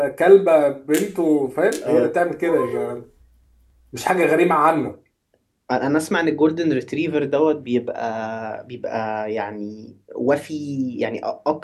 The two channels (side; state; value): both; identical; correlation 1.00